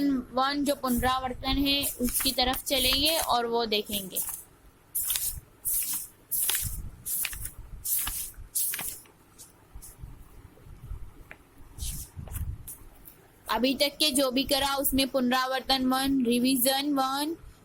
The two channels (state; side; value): identical; both; correlation 1.00